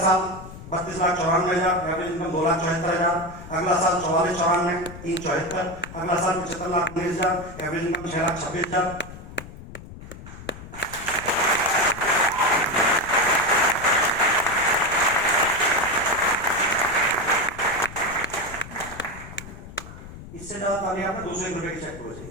32,94,000, एवरेज इनकम 2,74,000। अगला साल 44,94, 3,74। अगला साल 75,19,000, एवरेज इनकम 6,26,000। इससे ज्यादा ताली आपने 201 रुपए की चेक करो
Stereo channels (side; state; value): left; noise; rumble, 15 dB below the sound